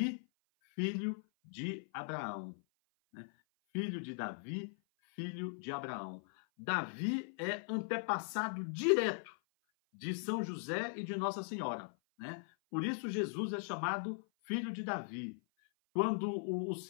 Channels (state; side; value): silent; right; 52 dB below the other